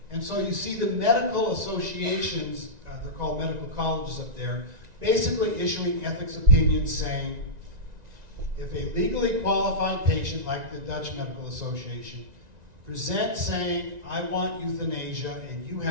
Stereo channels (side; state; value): left; late; 1.9 ms